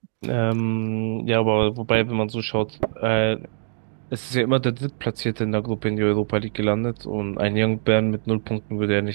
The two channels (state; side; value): silent; left; digital silence